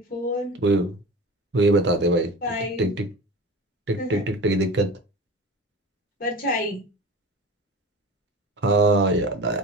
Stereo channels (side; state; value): both; normal; correlation 0.34